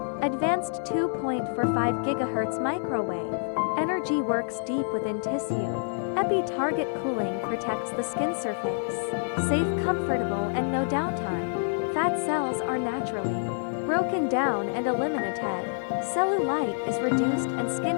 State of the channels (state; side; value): silent; right; 60 dB below the other